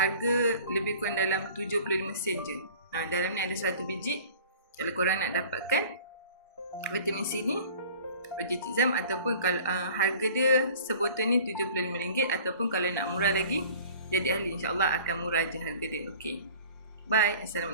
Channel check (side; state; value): both; inverted; correlation -0.46